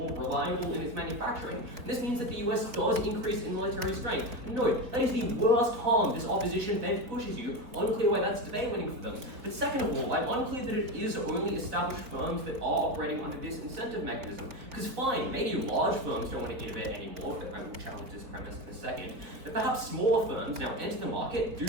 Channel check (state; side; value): late; left; 3.8 ms